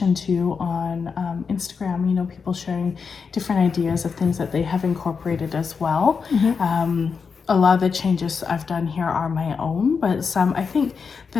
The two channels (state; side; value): quieter; right; 5.5 dB